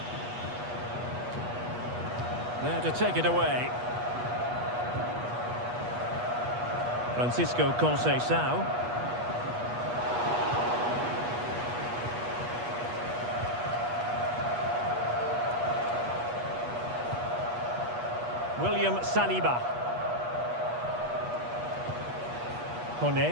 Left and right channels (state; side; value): late; left; 8.3 ms